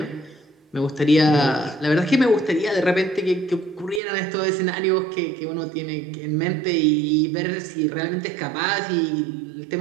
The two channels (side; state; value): left; drops out; at 4.0 s